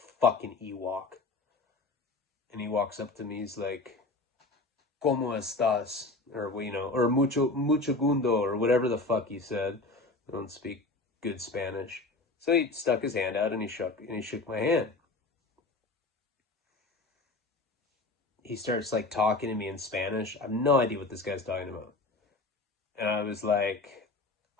fucking Ewok. And he walks up to me, he's like, ¿Cómo estás? Or, you know, or mucho gundo, or whatever the fuck he said. I don't speak good Spanish. So he stuck his hand out and he shook my hand. He starts like talking to me in Spanish. I have no idea what this guy's talking about. And I was like,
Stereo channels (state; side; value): quieter; right; 3.3 dB